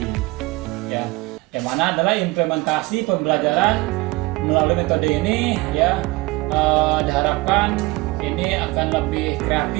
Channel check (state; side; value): quieter; left; 22.5 dB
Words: ya, yang mana adalah implementasi pembelajaran melalui metode ini ya, diharapkan ini akan lebih